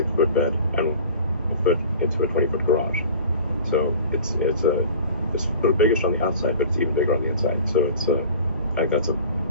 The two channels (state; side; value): inverted; both; correlation -0.41